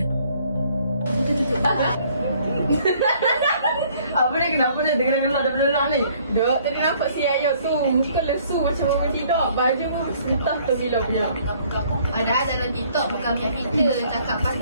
Apa ni, kenapa dia dengar gelak daripada gelak ni? Dok, tadi nampak si Ayah tu muka lesu macam orang tidur. Baju entah tu bila punya. Ada dalam TikTok bukan macam kita cakap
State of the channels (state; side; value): inverted; both; correlation -0.61